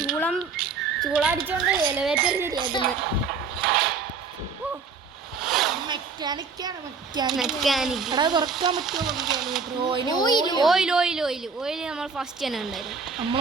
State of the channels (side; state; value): left; quieter; 5.0 dB